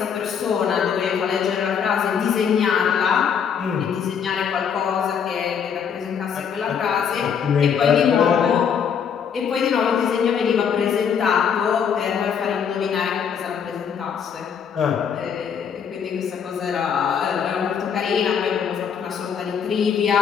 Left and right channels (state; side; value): quieter; right; 7.4 dB